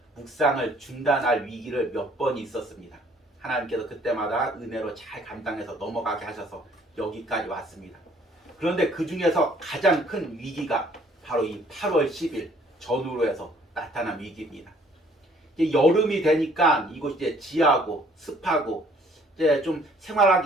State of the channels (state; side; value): normal; both; correlation 0.60